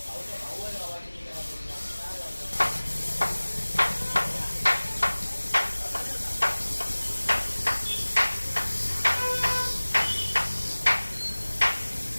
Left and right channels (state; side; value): inverted; both; correlation -1.00